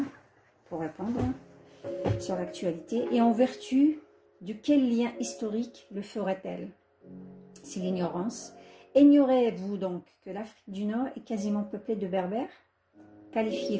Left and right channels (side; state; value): both; identical; correlation 1.00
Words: sur l'actualité. Et en vertu de quel lien historique le ferait-elle? C'est l'ignorance. Ignorez-vous donc que l'Afrique du Nord est quasiment peuplée de berbères, qualifiés